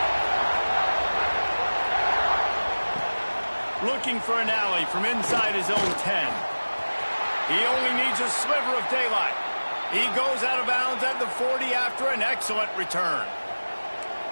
Looking for an alley from inside his own 10. He only needs a sliver of daylight. He goes out of bounds at the 40 after an excellent return.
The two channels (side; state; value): both; inverted; correlation -1.00